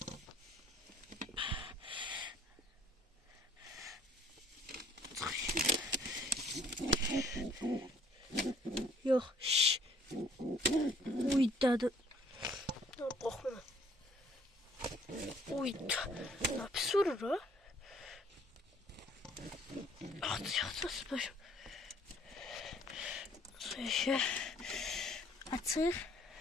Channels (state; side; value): normal; both; correlation 0.60